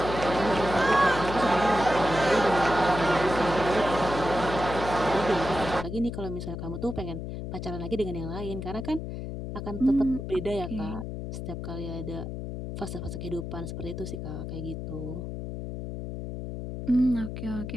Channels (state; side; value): noise; left; hum, 6 dB below the sound